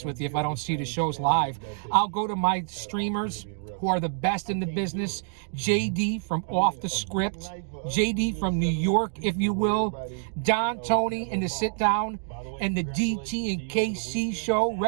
with you, if I don't see the shows live. I'll go to my streamers who are the best in the business. JD from Off the Script, JD from New York, if you will, Don Tony in the Sit Down, and the DT and KC show.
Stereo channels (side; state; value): left; silent; digital silence